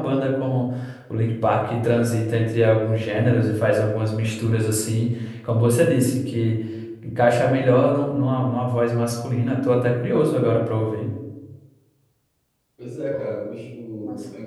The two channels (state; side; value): identical; both; correlation 1.00